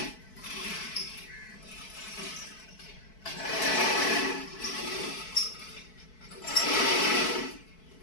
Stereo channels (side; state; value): right; late; 4.6 ms